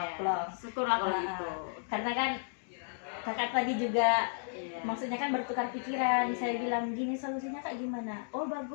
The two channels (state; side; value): silent; right; digital silence